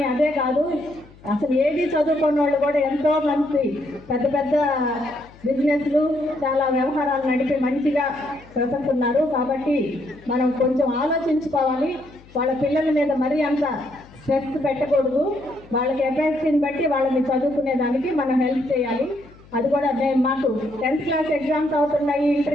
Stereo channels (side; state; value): left; noise; hum, 24 dB below the sound